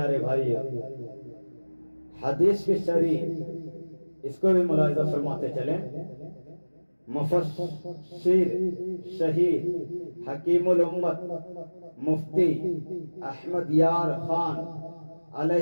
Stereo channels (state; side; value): inverted; both; correlation -1.00